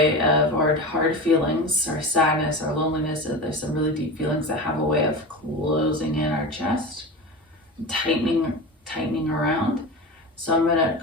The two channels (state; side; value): normal; both; correlation 0.27